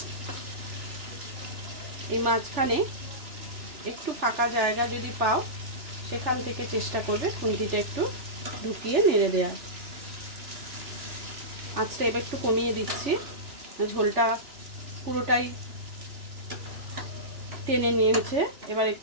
এই মাঝখানে একটু ফাঁকা জায়গা যদি পাও সেখান থেকে চেষ্টা করবে খুন্তিটা একটু ঢুকিয়ে নেড়ে দেওয়ার। আঁচটা এবার একটু কমিয়ে দিচ্ছি, ঝোলটা পুরোটাই টেনে নিয়েছে। এবার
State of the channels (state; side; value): late; left; 3.4 ms